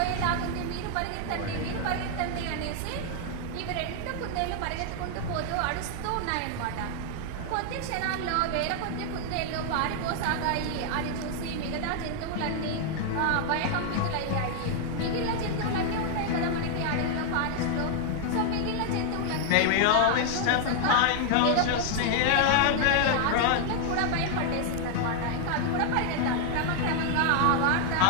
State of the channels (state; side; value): different; both; correlation 0.00